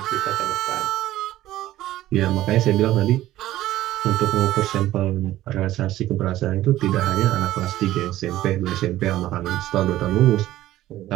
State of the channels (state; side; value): quieter; left; 14.7 dB